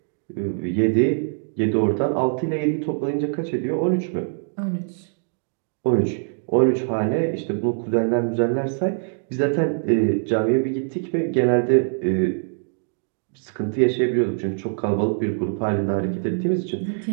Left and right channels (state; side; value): silent; left; digital silence